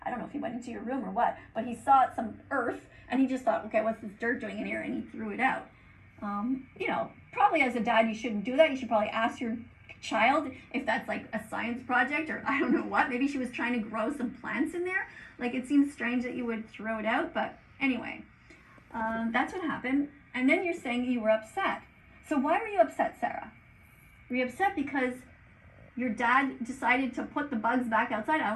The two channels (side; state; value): both; identical; correlation 1.00